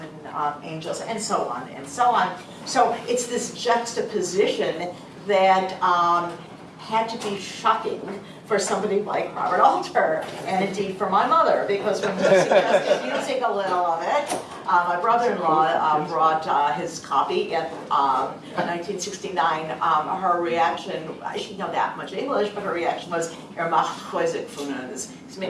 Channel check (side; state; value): both; identical; correlation 1.00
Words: angels, and so on and so on. So it's this juxtaposition that had to be shocking for somebody like Robert Alter, and indeed for my mother, because when we suggested using a little of it, my brother-in-law brought his copy in 1969. Her reaction, she didn't know that much English, but her reaction was, he's